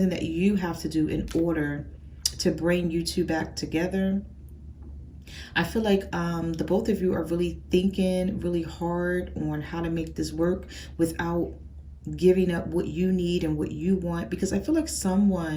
that you have to do in order to bring you two back together. I feel like the both of you are really thinking really hard on how to make this work without giving up what you need and what you want, because I feel like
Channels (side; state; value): both; identical; correlation 1.00